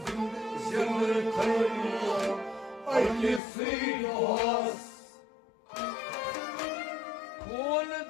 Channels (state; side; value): drops out; right; at 3.4 s